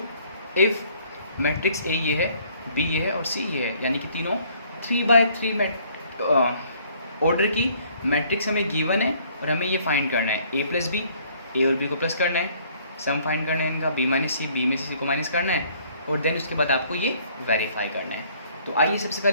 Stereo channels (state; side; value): inverted; both; correlation -0.61